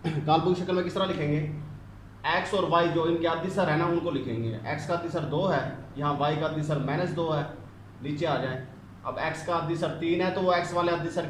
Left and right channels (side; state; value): both; identical; correlation 1.00